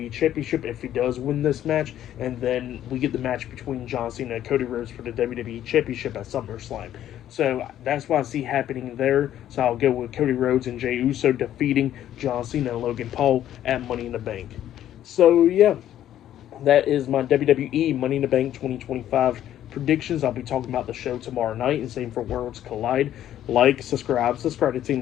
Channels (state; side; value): quieter; right; 11.7 dB